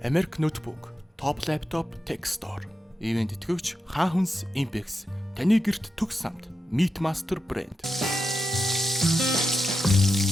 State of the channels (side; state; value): both; normal; correlation 0.88